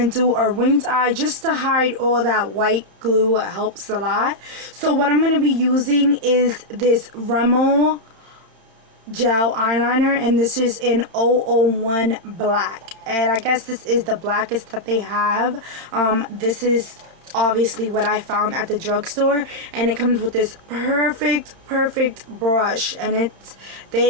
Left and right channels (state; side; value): late; left; 31 ms